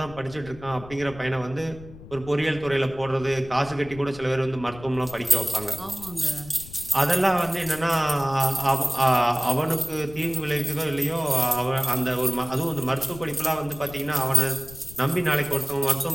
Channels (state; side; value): noise; left; rumble, 17 dB below the sound